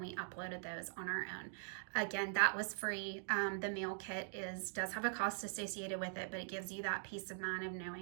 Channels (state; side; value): silent; left; digital silence